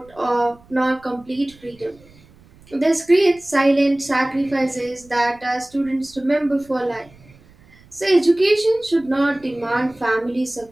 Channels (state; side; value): noise; right; rumble, 27 dB below the sound